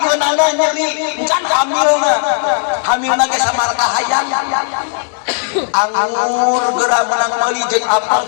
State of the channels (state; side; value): silent; right; digital silence